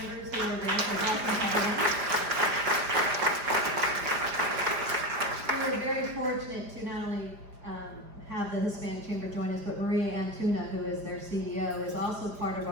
who are there. So welcome everyone. We were very fortunate to not only have the Hispanic Chamber join us, but Maria Antuna, who is their CEO, is also part of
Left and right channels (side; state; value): left; late; 5.0 ms